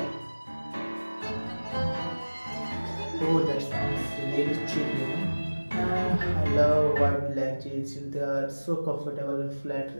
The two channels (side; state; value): both; inverted; correlation -1.00